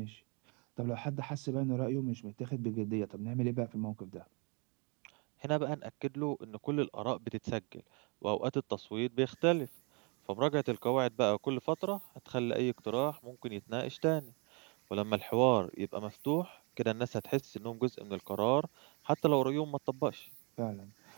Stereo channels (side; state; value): left; quieter; 33.0 dB